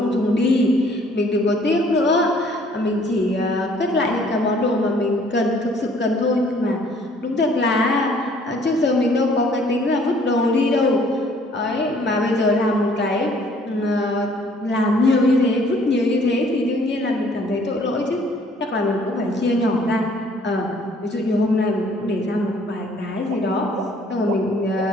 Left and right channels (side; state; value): both; normal; correlation 0.59